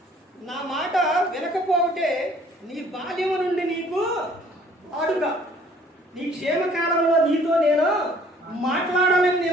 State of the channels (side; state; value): both; normal; correlation 0.57